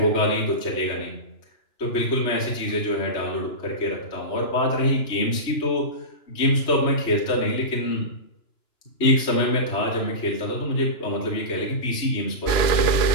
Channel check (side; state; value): right; late; 2.9 ms